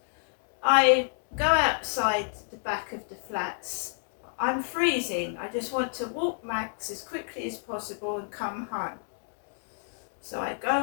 I go outside the back of the flats. I'm freezing. I just want to walk Max as quickly as possible and come home. So I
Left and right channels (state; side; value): silent; right; digital silence